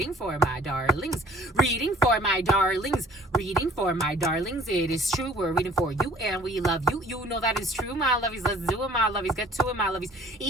for my darlings. Reading for my darlings. Reading for my darlings. It is true. We're reading for you, and we love you. You know that is true, my lovies. Let's do it, my lovies. Get to it, my lovies.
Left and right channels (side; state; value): both; normal; correlation 0.53